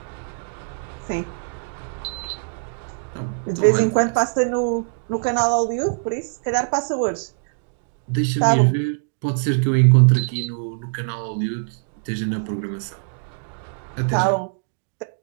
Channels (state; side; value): silent; left; digital silence